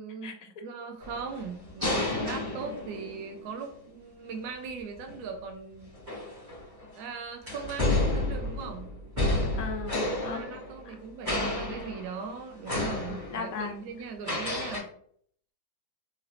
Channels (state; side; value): late; left; 6.9 ms